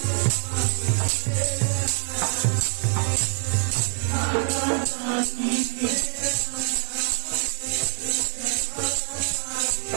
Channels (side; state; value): left; silent; digital silence